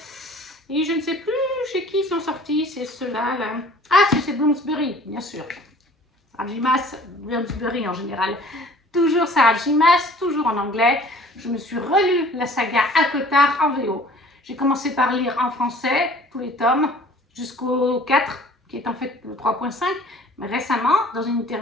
Et je ne sais plus chez qui ils sont sortis, c'est ceux-là. Là. Ah, c'est Bloomsbury, bien sûr. Sarah J. Maas, Bloomsbury en général. Toujours Sarah J. Maas, toujours en anglais. Je me suis relu la saga ACOTAR en VO. J'ai commencé par lire en français tous les tomes jusqu'au 4, qui est en fait le 3.5. Mais récemment, dans une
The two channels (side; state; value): both; normal; correlation 0.50